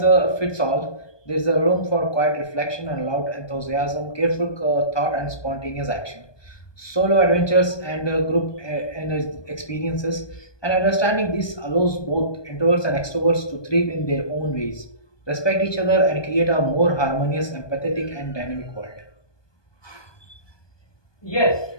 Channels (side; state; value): right; late; 1.2 ms